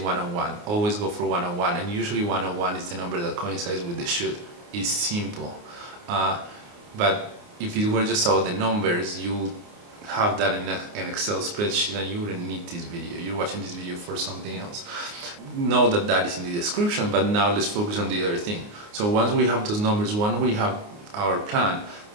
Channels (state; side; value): late; left; 29 ms